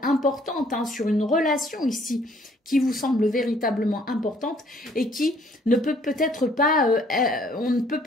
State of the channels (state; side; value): normal; both; correlation 0.62